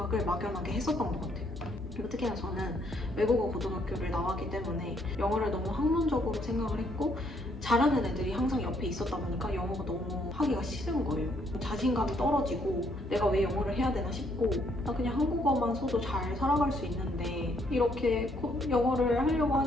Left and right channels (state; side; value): normal; both; correlation 0.70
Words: 막연하게 했었던 것 같아요. 그리고 특히나 저는 외국어 고등학교를 나왔기 때문에 영어를 너무 학문적으로 생각을 했고 잘하는 애들이 항상 옆에 있었다 보니까 영어가 너무 하기가 싫은 거예요. 자신감이 떨어지고 내가 왜 영어를 해야 되나 싶고 나 그냥 한국어만 써도 잘 살아갈 수 있는데 이렇게 영어를 하려고